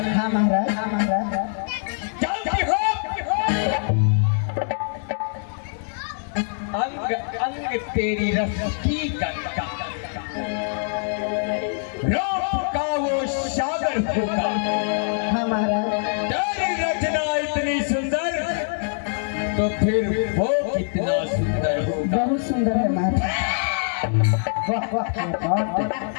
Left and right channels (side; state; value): right; silent; digital silence